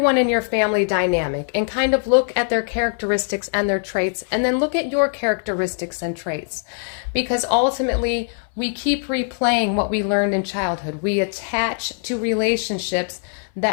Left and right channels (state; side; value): silent; right; 65 dB below the other